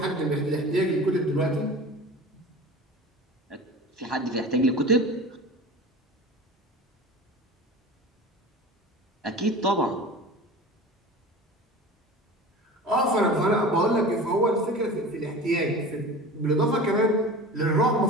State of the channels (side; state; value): both; normal; correlation 0.36